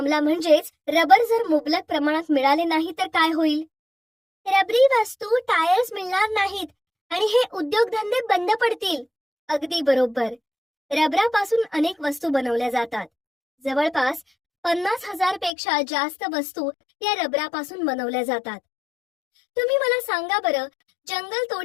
म्हणजेच रबर जर मुबलक प्रमाणात मिळाले नाही तर काय होईल? रबरी वस्तू, टायर्स मिळणार नाहीत आणि हे उद्योगधंदे बंद पडतील. अगदी बरोबर. रबरापासून अनेक वस्तू बनवल्या जातात. जवळपास 50,000 पेक्षा जास्त वस्तू या रबरापासून बनवल्या जातात. तुम्ही मला सांगा बरं, जंगल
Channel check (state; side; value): drops out; right; at 15.5 s